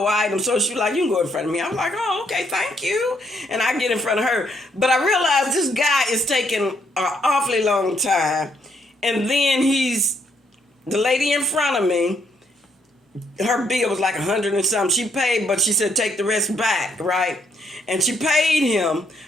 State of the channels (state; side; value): normal; both; correlation 0.72